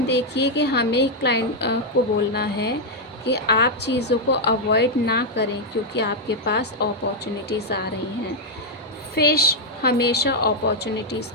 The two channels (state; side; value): normal; both; correlation -0.02